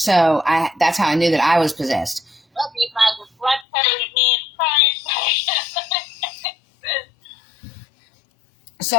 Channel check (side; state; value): right; drops out; at 3.7 s